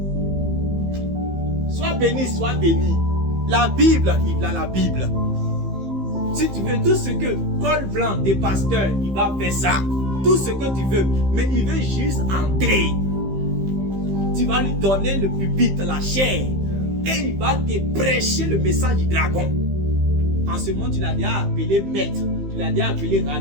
Sois béni, sois béni. La Bible, il a la Bible. Si tu veux tout ce que col blanc des pasteurs, il va faire ça. Tout ce que tu veux. Mais il veut juste entrer. Tu vas lui donner le pupitre, la chair. Et il va te prêcher le message du dragon. En ce moment, tu l'as déjà appelé maître. Tu l'as déjà appelé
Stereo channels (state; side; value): late; left; 15 ms